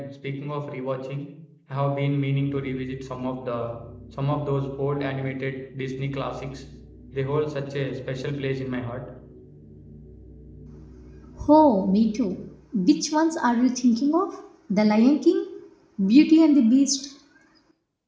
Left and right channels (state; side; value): identical; both; correlation 1.00